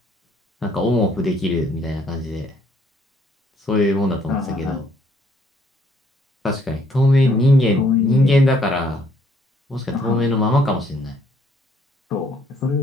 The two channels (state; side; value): normal; both; correlation 0.65